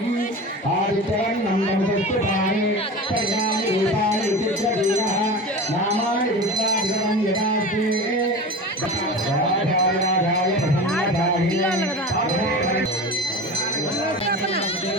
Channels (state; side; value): normal; both; correlation 0.31